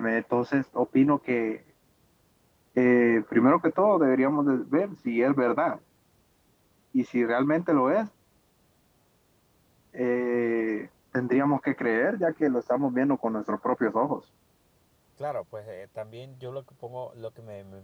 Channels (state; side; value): identical; both; correlation 1.00